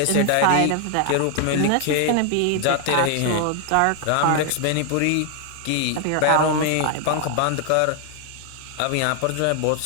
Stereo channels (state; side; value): different; both; correlation 0.00